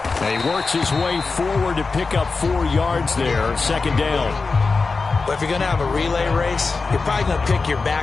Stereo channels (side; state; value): right; quieter; 4.2 dB